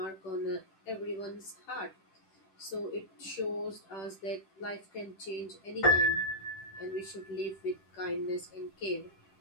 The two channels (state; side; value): late; right; 10 ms